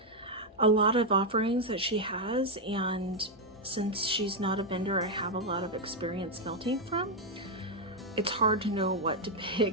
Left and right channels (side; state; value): both; normal; correlation 0.01